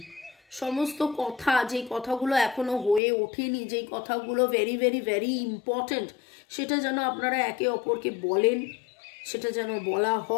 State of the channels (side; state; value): right; drops out; at 3.0 s